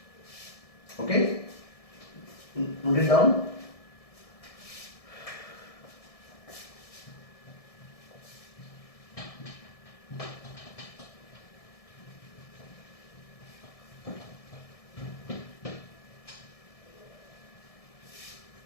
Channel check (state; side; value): late; right; 1.7 ms